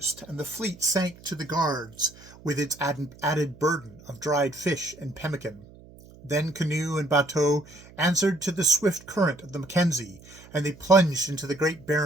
and the fleet sank to the guards with its added burden of dried fish and pemmican. Then canoe and bateau answered to the swift current of the Mackenzie, and they plunged into the great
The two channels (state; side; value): noise; right; hum, 22 dB below the sound